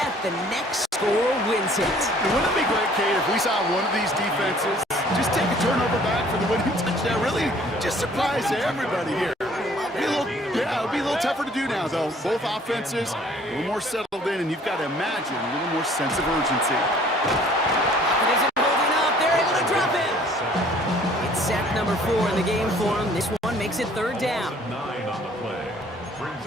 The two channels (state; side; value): normal; both; correlation 0.56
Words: The next score wins it. Wouldn't it be great, Kate, if we saw one of these defenses just take a turnover back for the winning touchdown? Really just surprise everybody here. It'll be a little tougher to do now, though. Both offenses a little more settled in, and you've got to imagine a little more sense of urgency. It isn't holding up. They're able to drop it. It's sack number 4 in the game for him. This one makes it third down. 9 on the play. Brings